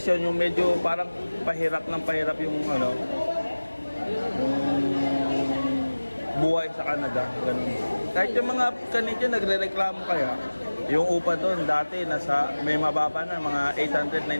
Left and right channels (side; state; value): both; inverted; correlation -1.00